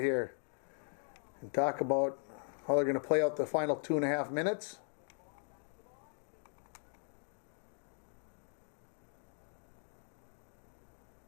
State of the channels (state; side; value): silent; right; 52 dB below the other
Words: here and talk about how they're going to play out the final 2.5 minutes.